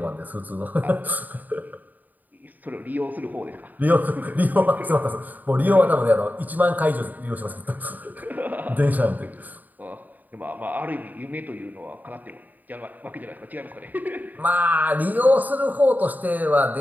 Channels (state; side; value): late; left; 0.083 ms